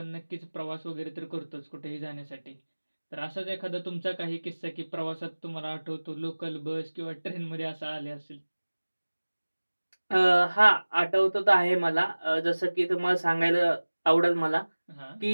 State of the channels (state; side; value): inverted; both; correlation -1.00